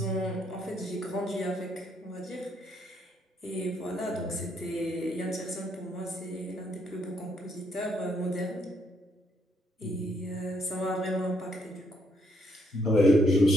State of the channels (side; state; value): both; normal; correlation 0.73